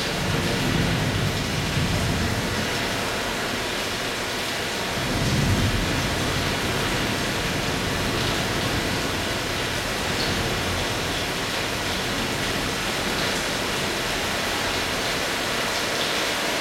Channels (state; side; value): identical; both; correlation 1.00